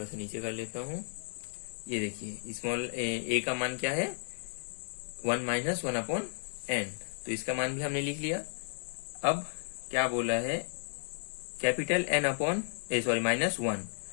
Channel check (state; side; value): silent; right; digital silence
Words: सा नीचे कर लेता हूं। ये देखिए स्मॉल ए का मान क्या है, 1 माइनस 1 अपॉन एन। तो इसका मान भी हमने लिख लिया। अब क्या बोला है, कैपिटल एन अपॉन माइनस 1।